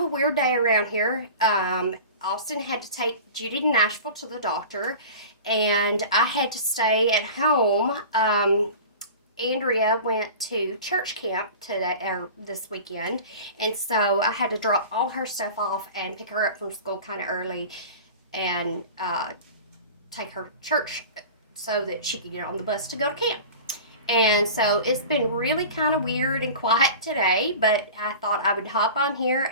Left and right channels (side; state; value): both; inverted; correlation -0.37